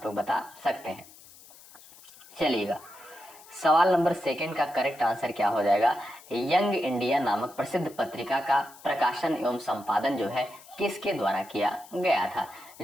लोग बता सकते हैं। चलिएगा, सवाल नंबर सेकंड का करेक्ट आंसर क्या हो जाएगा? यंग इंडिया नामक प्रसिद्ध पत्रिका का प्रकाशन एवं संपादन जो है किसके द्वारा किया गया था?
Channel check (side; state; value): left; noise; hiss, 22 dB below the sound